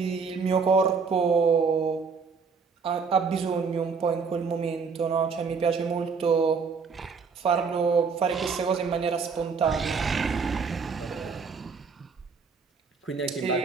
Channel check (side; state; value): left; quieter; 5.3 dB